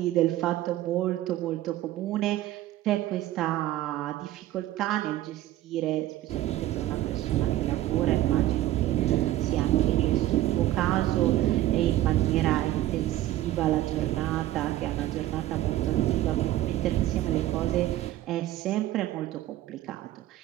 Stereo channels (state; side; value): quieter; left; 14.6 dB